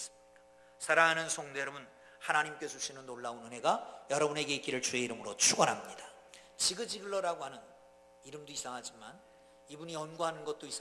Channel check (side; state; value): both; identical; correlation 1.00